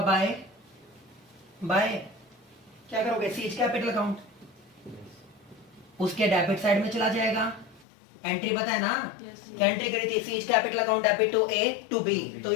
बाय क्या करोगे? Seize capital account. उसके डेबिट साइड में चला जाएगा। एंट्री पता है ना? Yes, क्या एंट्री करी थी? C's capital account debit to A to B. तो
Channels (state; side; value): drops out; right; at 7.9 s